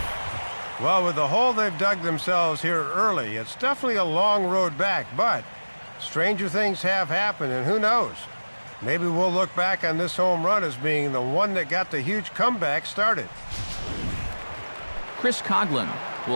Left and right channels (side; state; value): both; inverted; correlation -1.00